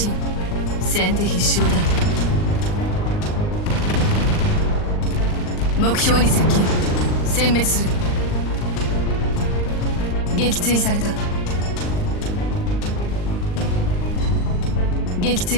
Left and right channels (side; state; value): right; late; 39 ms